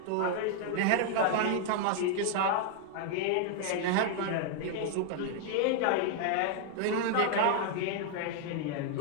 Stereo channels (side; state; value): both; different; correlation 0.00